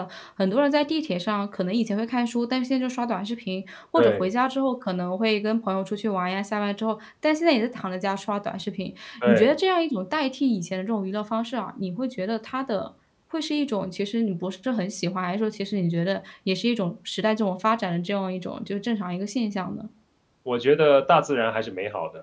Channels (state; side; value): identical; both; correlation 1.00